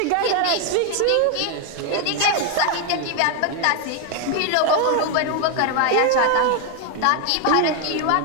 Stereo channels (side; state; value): both; different; correlation 0.01